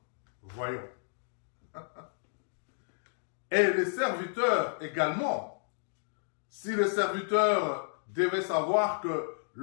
Voyons. Et les serviteurs également. Si les serviteurs devaient savoir que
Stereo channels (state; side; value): silent; right; digital silence